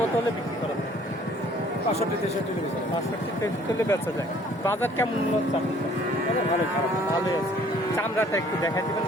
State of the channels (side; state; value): both; normal; correlation 0.57